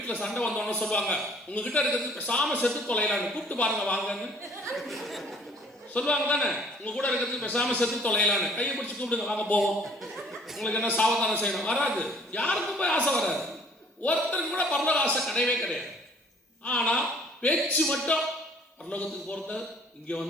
சண்டை வந்தோன்னு சொல்லுவாங்க, உங்ககிட்ட இருக்கிறது பேசாம செத்து தொலைலான்னு, கூப்பிட்டு பாருங்க வாங்கன்னு சொல்லுவாங்க தானே. உங்க கூட இருக்கிறது பேசாம செத்து தொலைலான்னு கையை பிடிச்சி கூப்பிடுங்க, வாங்க போவோம். உங்களுக்கு என்ன சாவதானம் செய்யணும்? வராது. யாருக்கும் போய் ஆசை வராது. ஒருத்தருக்கு கூட பரலோக ஆசை கிடையவே கிடையாது. ஆனா பேச்சு மட்டும், பரலோகத்துக்கு போறது இங்க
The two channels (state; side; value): normal; both; correlation 0.57